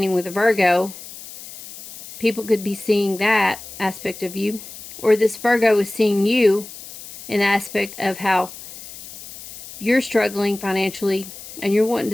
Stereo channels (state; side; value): noise; left; hiss, 15 dB below the sound